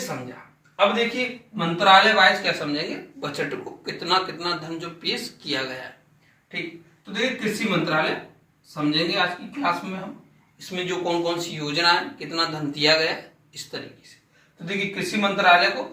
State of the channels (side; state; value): both; identical; correlation 1.00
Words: अब देखिए मंत्रालय वाइज क्या समझेंगे बजट को, कितना कितना धन जो पेश किया गया है। ठीक, तो देखिए कृषि मंत्रालय समझेंगे आज की क्लास में हम। इसमें जो कौन कौन सी योजना है, कितना धन दिया गया है, इस तरीके से। तो देखिए कृषि मंत्रालय को